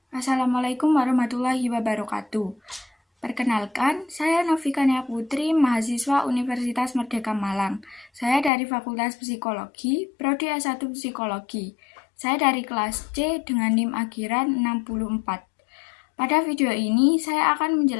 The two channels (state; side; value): drops out; right; at 8.5 s